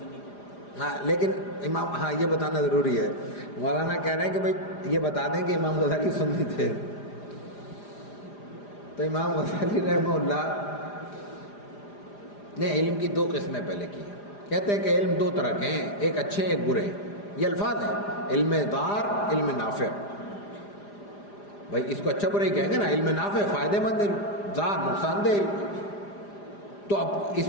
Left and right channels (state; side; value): late; right; 4.9 ms